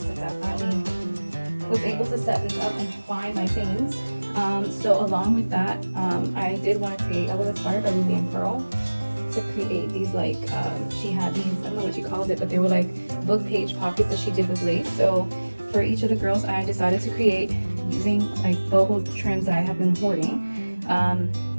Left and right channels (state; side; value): inverted; both; correlation -1.00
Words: I finally was able to set this up and find my things. So along with that, I did want to create, I was inspired by Ruby and Pearl to create these like, she had these, I don't know what she called it, but they were like book page pockets that she did with lace. So for each of the girls, I decided to create using like boho trims that I have been hoarding.